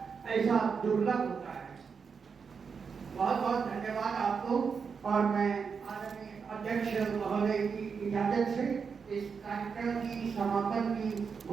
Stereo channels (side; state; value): left; quieter; 5.8 dB